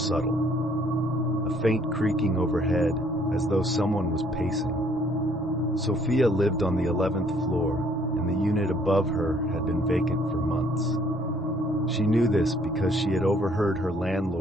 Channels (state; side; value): normal; both; correlation 0.63